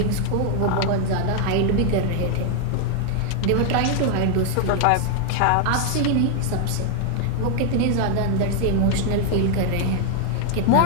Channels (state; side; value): different; both; correlation 0.00